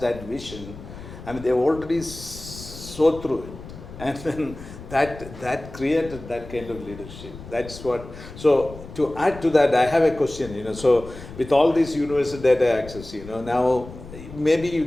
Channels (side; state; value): left; noise; rumble, 15 dB below the sound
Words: vision. I mean, they already saw through it. And then that created that kind of leadership. That's what. So to add to that, I have a question. So with all this universal data access, now maybe you